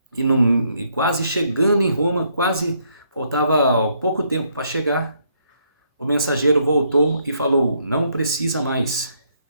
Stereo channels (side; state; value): both; inverted; correlation -0.72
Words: e quase chegando em Roma, quase faltava pouco tempo para chegar, o mensageiro voltou e falou: não precisa mais,